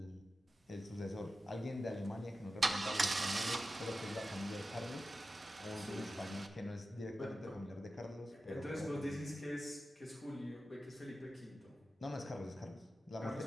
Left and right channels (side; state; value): both; normal; correlation 0.93